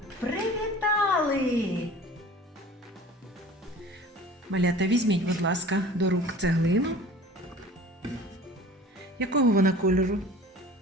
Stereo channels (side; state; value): both; normal; correlation 0.44